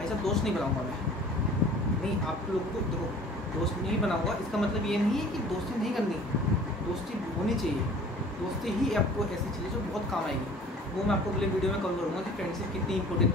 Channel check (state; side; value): normal; both; correlation 0.48